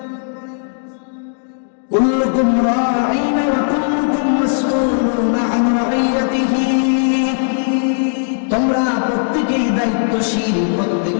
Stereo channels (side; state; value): right; silent; digital silence